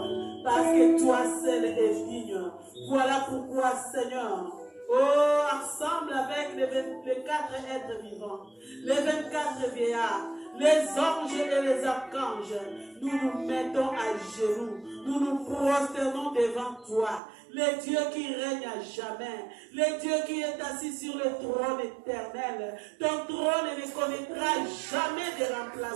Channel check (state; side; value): drops out; left; at 17.2 s